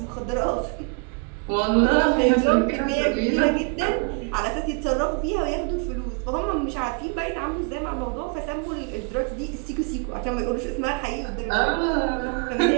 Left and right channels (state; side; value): quieter; left; 34.9 dB